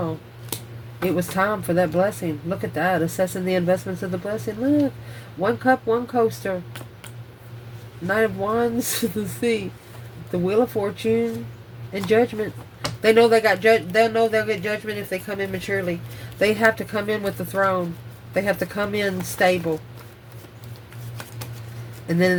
It was time for that blessing. Look at that. Assessing the investments of the blessing. Look. 1 cup, 1 coaster. Knight of Wands, the Sea. The Wheel of Fortune and Judgment. They know they got they'll know they'll get judgment if they come in maturely. They have to come in with the throne. They have to come in stable. And then in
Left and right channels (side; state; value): both; identical; correlation 1.00